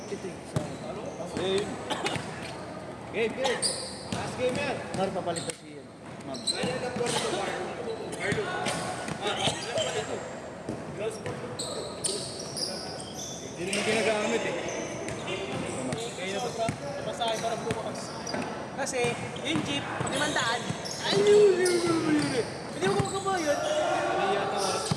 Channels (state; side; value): identical; both; correlation 1.00